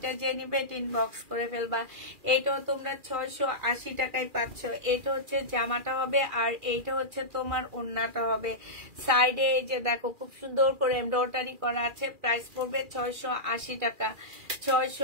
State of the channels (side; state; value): left; late; 2.4 ms